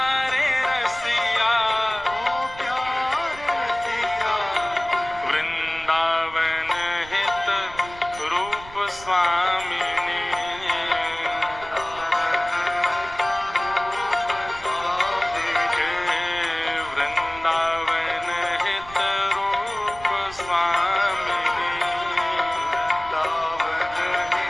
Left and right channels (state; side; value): noise; right; rumble, 18 dB below the sound